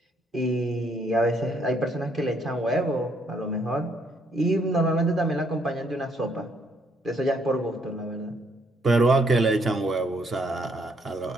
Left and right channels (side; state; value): both; normal; correlation 0.70